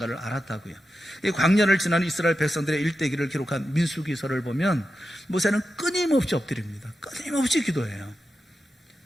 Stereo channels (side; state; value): both; normal; correlation 0.90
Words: 알았다고요. 이 광야를 지나는 이스라엘 백성들의 일대기를 기록한 민수기서를 보면 모세는 끊임없이 엎드립니다. 끊임없이 기도해요.